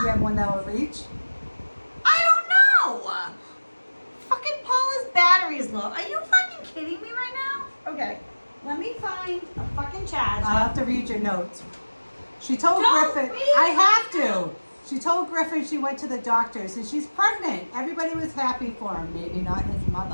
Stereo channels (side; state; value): both; inverted; correlation -1.00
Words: you have one that will reach? I don't know. Fucking Paula's battery is low. Are you fucking kidding me right now? Okay, let me find a fucking charger. I'll have to read your notes. She told Don't Griffin. read I have to. She told Griffin she went to the doctors and she's pregnant. Everybody was happy for him. Maybe not his